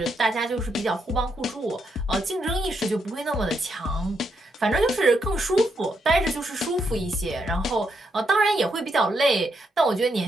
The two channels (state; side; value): normal; both; correlation 0.79